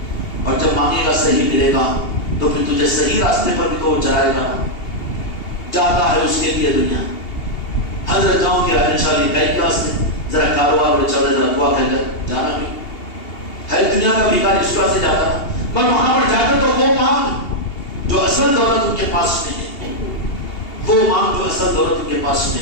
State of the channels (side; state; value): right; late; 2.8 ms